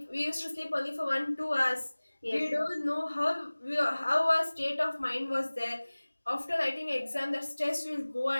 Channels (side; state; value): both; inverted; correlation -1.00